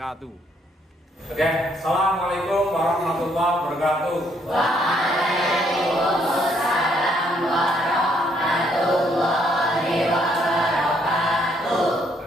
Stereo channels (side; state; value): both; normal; correlation 0.69